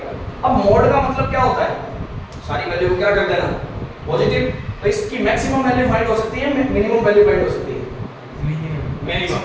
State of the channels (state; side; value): identical; both; correlation 1.00